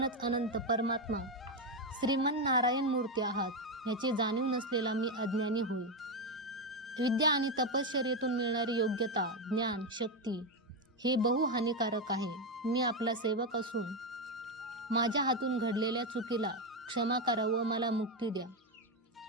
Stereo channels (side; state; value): both; normal; correlation 0.08